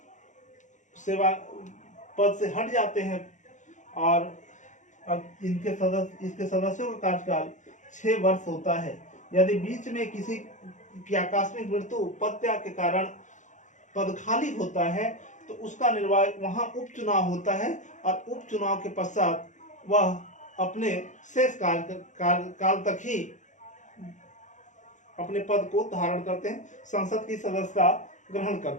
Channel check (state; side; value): late; right; 0.36 ms